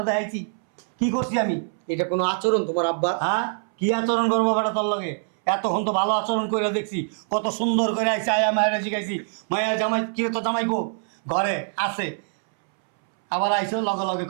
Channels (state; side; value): silent; left; 63 dB below the other